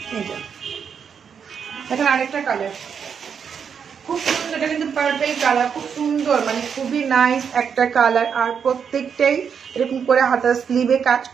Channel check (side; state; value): left; quieter; 7.0 dB